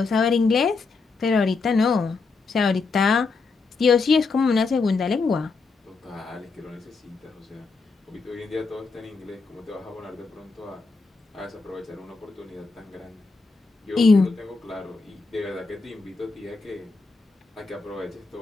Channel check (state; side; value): quieter; right; 4.2 dB